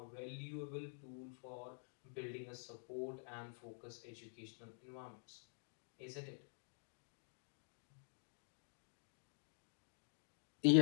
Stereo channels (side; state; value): right; silent; digital silence